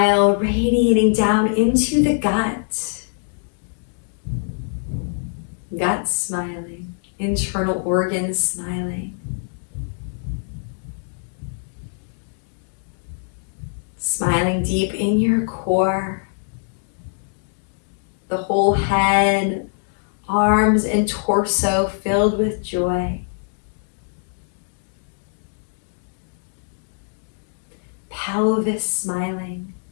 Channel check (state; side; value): silent; right; digital silence